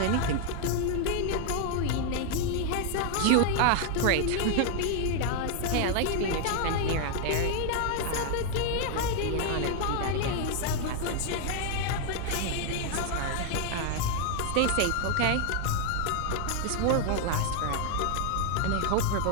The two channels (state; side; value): different; both; correlation 0.00